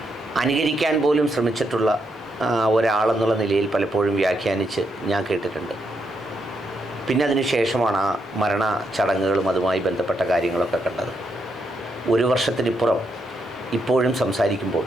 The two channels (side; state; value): both; normal; correlation 0.79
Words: അനുകരിക്കാൻ പോലും ശ്രമിച്ചിട്ടുള്ള ഒരാളെന്നുള്ള നിലയിൽ പലപ്പോഴും വ്യാഖ്യാനിച്ച് ഞാൻ കേട്ടിട്ടുണ്ട്. പിന്നെ അതിന് ശേഷമാണ് ആ മരണ ചടങ്ങുകളും അതുമായി ബന്ധപ്പെട്ട കാര്യങ്ങളൊക്കെ കണ്ടത്. 1 വർഷത്തിനിപ്പുറം ഇപ്പോഴും സംസാരിക്കുമ്പോൾ